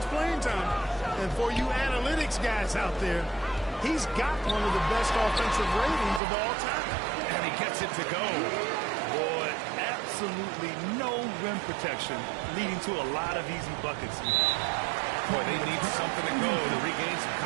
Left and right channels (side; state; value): left; drops out; at 6.2 s